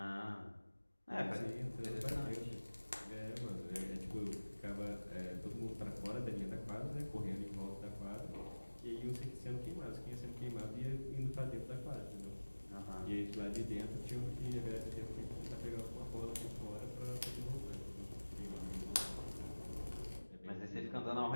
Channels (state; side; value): inverted; both; correlation -1.00